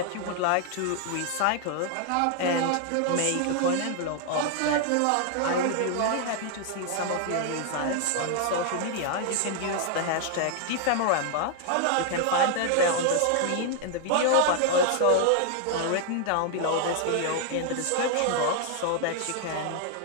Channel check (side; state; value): both; different; correlation 0.00